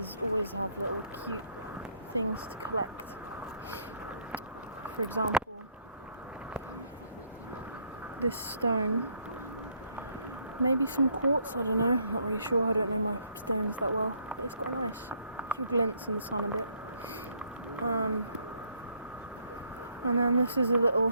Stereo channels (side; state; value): both; inverted; correlation -0.67